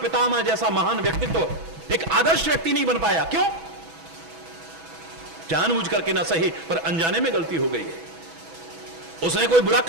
जैसा महान व्यक्तित्व एक आदर्श व्यक्ति नहीं बन पाया, क्यों? जानबूझ करके ना सही पर अनजाने में गलती हो गई है। उसने कोई बुरा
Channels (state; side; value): late; left; 6.1 ms